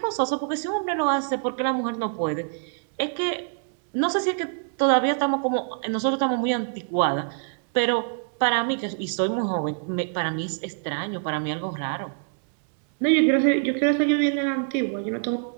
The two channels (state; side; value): silent; left; 62 dB below the other